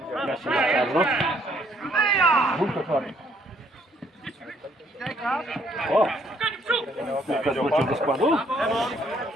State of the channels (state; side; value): normal; both; correlation 0.67